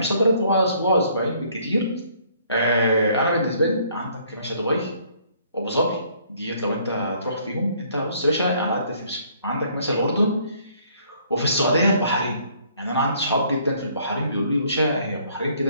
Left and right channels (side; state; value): both; inverted; correlation -0.62